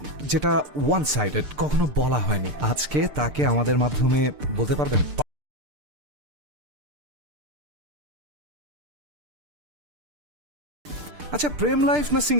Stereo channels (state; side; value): late; left; 6.7 ms